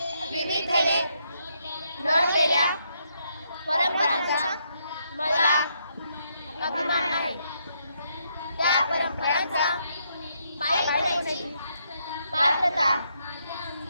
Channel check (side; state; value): both; inverted; correlation -0.76